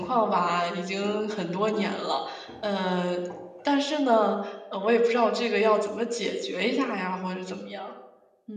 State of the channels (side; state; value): both; identical; correlation 1.00